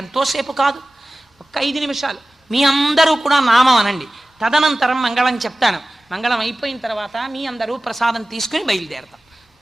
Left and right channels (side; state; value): both; normal; correlation 0.96